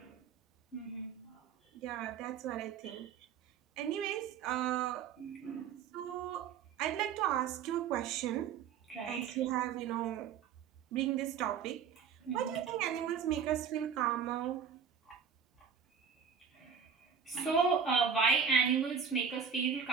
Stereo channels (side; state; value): left; quieter; 7.0 dB